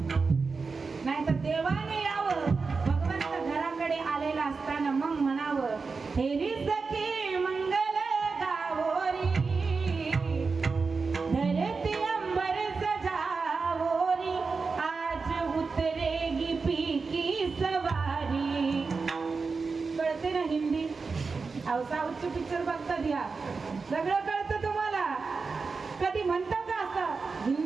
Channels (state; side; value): quieter; left; 4.6 dB